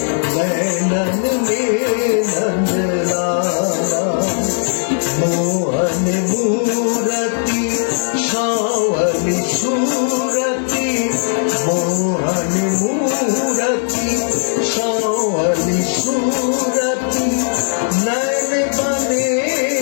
नैनन में नंद लाला मोहन मूरति शावली सूरति मोहन मूरति शावली सूरति नैन बने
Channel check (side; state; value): right; silent; 60 dB below the other